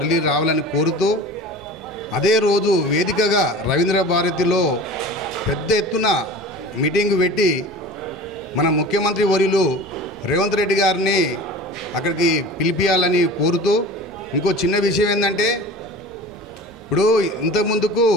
రావాలని కోరుతూ అదే రోజు వేదికగా రవీంద్ర భారతిలో పెద్ద ఎత్తున మీటింగ్ పెట్టి మన ముఖ్యమంత్రి వర్యులు రేవంత్ రెడ్డి గారిని అక్కడికి పిలిపియాలని కోరుతూ ఇంకో చిన్న విషయం ఏంటంటే ఇప్పుడు ఇంతకుముందుకు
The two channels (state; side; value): normal; both; correlation 0.38